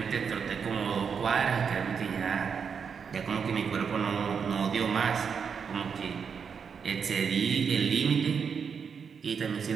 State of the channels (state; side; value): quieter; left; 6.5 dB